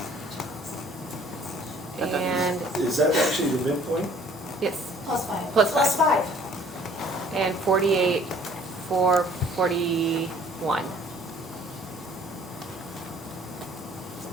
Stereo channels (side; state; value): both; normal; correlation 0.56